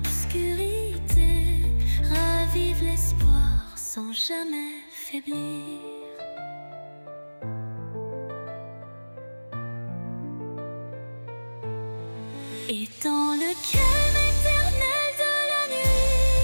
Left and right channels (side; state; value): both; inverted; correlation -1.00